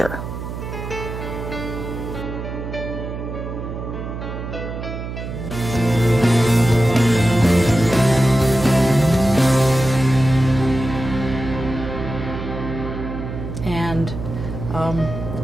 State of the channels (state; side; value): noise; right; hum, 7 dB below the sound